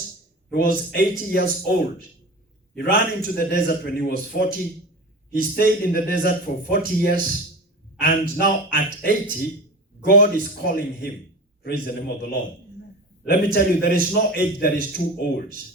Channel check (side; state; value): both; normal; correlation 0.31